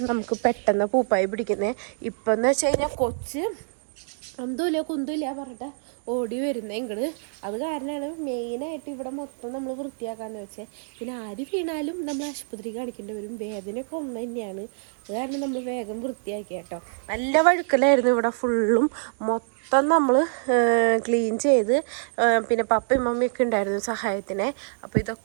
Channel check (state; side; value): silent; left; digital silence